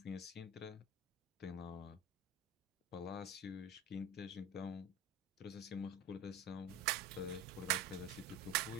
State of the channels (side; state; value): left; quieter; 3.0 dB